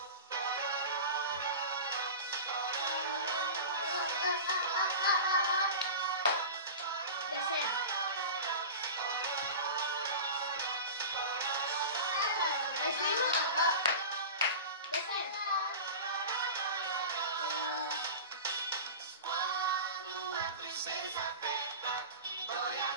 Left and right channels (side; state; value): both; inverted; correlation -0.31